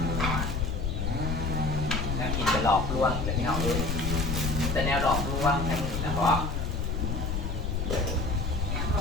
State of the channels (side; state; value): left; noise; rumble, 1 dB below the sound